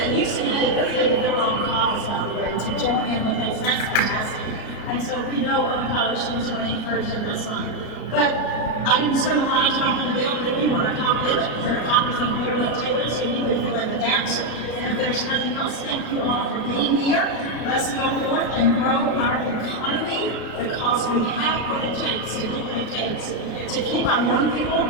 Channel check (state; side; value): late; right; 33 ms